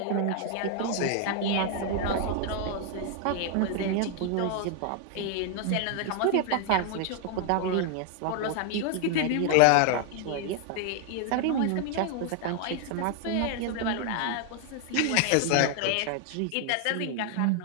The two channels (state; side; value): different; both; correlation 0.00